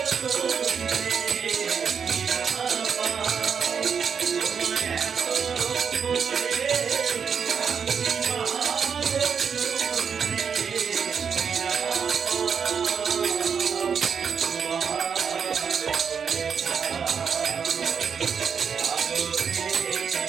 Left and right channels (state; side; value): quieter; left; 6.7 dB